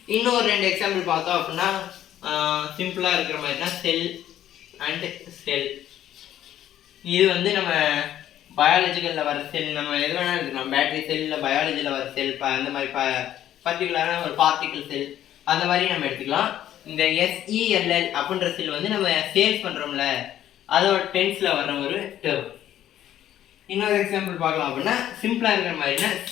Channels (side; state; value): right; quieter; 11.8 dB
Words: இன்னொரு 2 எக்ஸாம்பிள் பார்த்தோம் அப்படின்னா சிம்பிளாக இருக்கிற மாதிரினா செல் அண்ட் செல். இது வந்து நம்ம பயாலஜிக்கலில் வர செல், நம்ம எது வேணாலும் எடுத்துக்கலாம். பேட்டரி செல், இல்லை பயாலஜியில் வர செல், அந்த மாதிரி பர்டிகுலரான ஒரு பார்ட்டிக்கல் செல், அந்த மாதிரி நம்ம எடுத்துக்கலாம். இந்த SELL அப்படின்ற செல் வந்து நம்ம சேல்ஸ் பண்ணுறோம்ல, அதோட டென்ஸில் வர்ற ஒரு டேர்ம். இன்னொரு எக்ஸாம்பிள் பார்க்கலாம் அப்படின்னா சிம்பிளாக இருக்கிற மாதிரினா